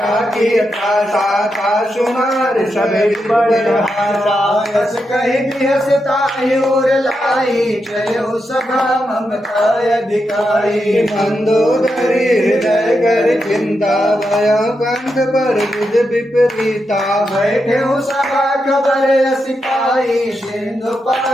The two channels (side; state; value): both; normal; correlation 0.85